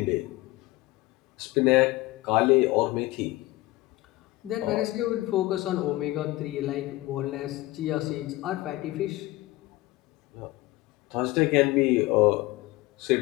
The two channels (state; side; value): quieter; right; 19.2 dB